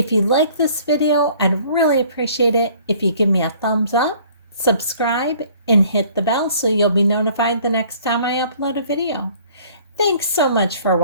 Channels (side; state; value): both; inverted; correlation -0.54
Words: you like this video, I'd really appreciate it if you give me a thumbs up, subscribe, and hit the bell so you'll be notified the next time I upload a video. Thanks so much for